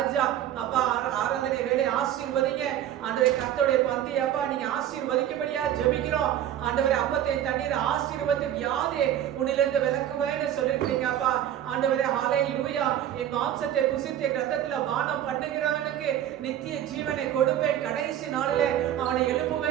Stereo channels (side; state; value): left; quieter; 11.3 dB